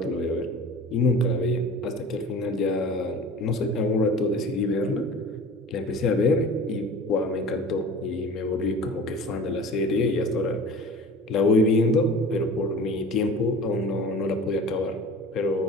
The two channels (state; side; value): normal; both; correlation 0.40